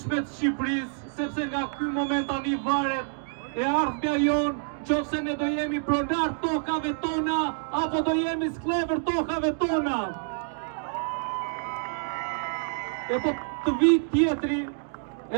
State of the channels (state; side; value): silent; left; digital silence